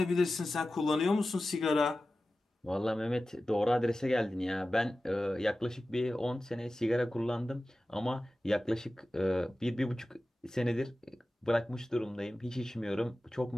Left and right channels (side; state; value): both; normal; correlation 0.95